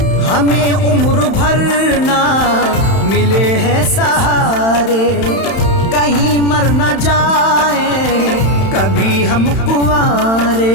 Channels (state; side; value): late; right; 31 ms